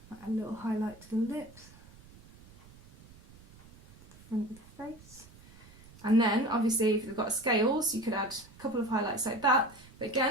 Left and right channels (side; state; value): right; noise; rumble, 22 dB below the sound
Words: Add a little highlight to the lips, the front of the face. And then obviously if you've got scales, you could add a couple of highlights like that. But